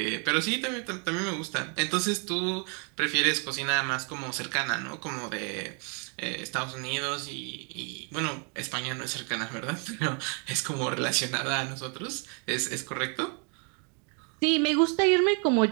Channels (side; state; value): left; quieter; 37.7 dB